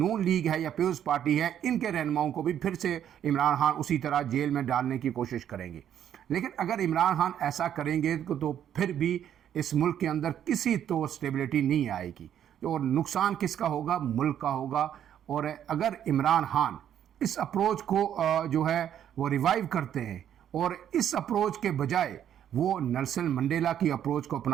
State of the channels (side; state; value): left; quieter; 10.0 dB